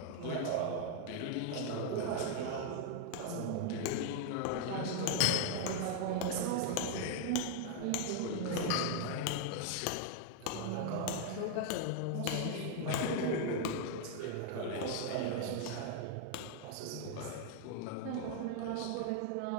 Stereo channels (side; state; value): both; different; correlation 0.00